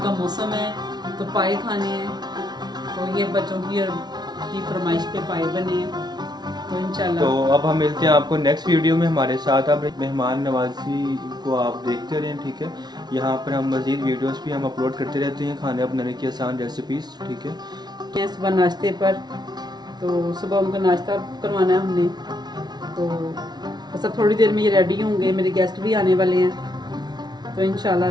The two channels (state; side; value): late; left; 0.20 ms